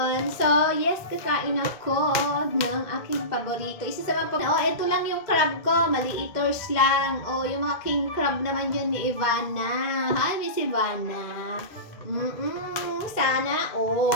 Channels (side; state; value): right; late; 2.0 ms